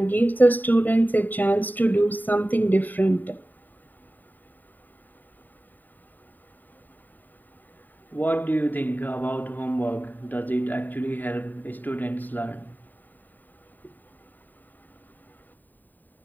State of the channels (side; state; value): right; late; 0.088 ms